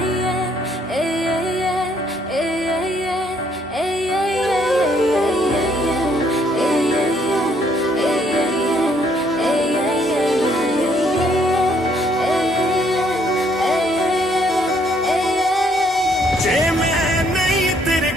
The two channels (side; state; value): both; normal; correlation 0.68